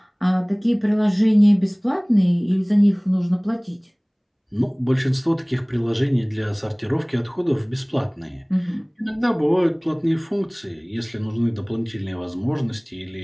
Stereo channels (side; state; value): both; identical; correlation 1.00